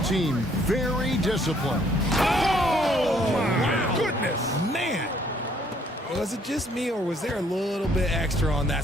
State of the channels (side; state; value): both; normal; correlation 0.64